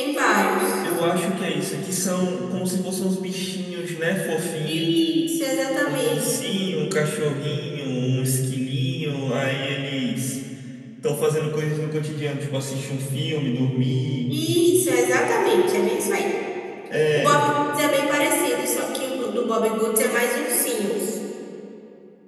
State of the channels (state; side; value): identical; both; correlation 1.00